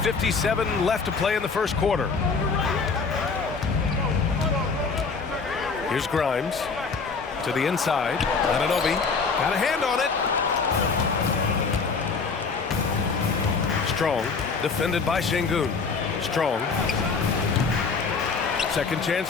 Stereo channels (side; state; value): right; quieter; 4.9 dB